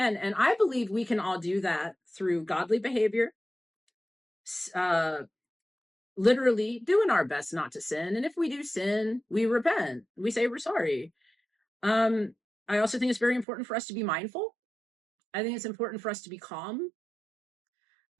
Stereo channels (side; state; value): left; drops out; at 13.5 s